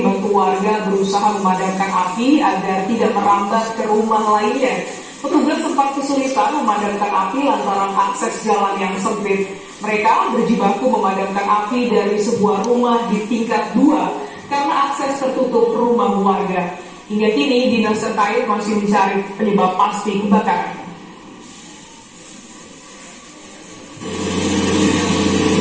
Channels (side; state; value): both; identical; correlation 1.00